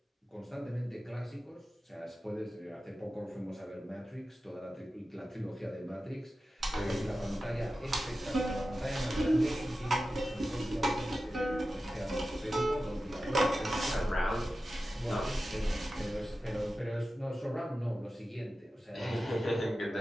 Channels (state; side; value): normal; both; correlation 0.93